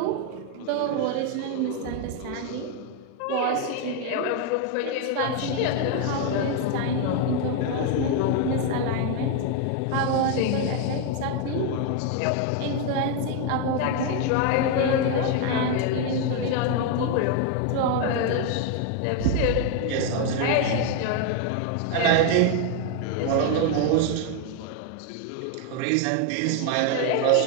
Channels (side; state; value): both; different; correlation 0.01